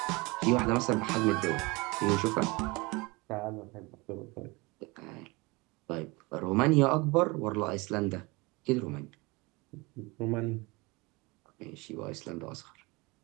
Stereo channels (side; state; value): left; quieter; 25.1 dB